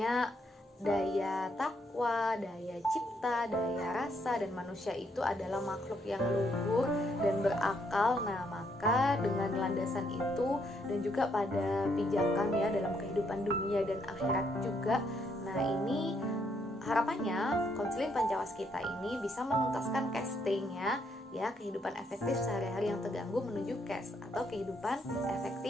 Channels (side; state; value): both; normal; correlation 0.73